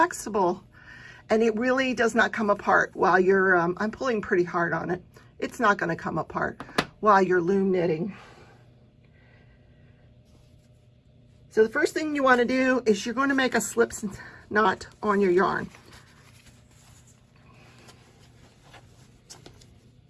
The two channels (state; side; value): identical; both; correlation 1.00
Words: and it really does not come apart while you're, I'm pulling pretty hard on it. It's not gonna come apart while you're loom knitting. So the first thing you wanna do is you're gonna make a slip knot on your yarn.